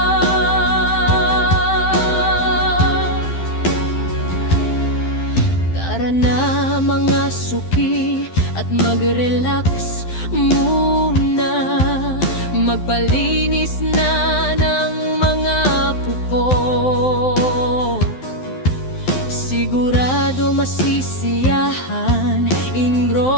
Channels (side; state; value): right; late; 12 ms